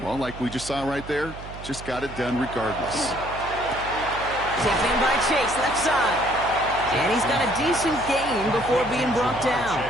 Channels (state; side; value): noise; right; hum, 13 dB below the sound